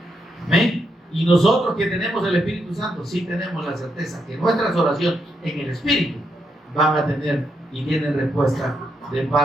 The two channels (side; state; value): both; normal; correlation 0.80